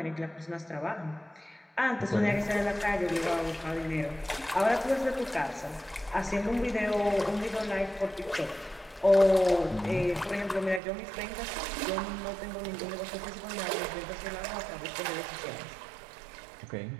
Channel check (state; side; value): drops out; left; at 10.8 s